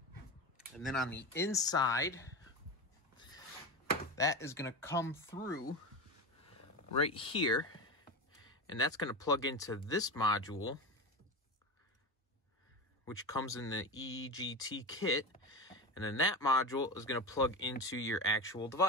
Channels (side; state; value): both; normal; correlation 0.23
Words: And then on the inside, that is going to come through right here. And that's going to plug into this module, which comes in the EGT kit. And then that module is going to plug into your actual